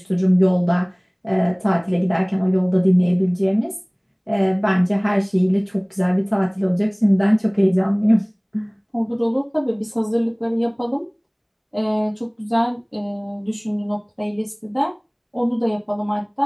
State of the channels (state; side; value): identical; both; correlation 1.00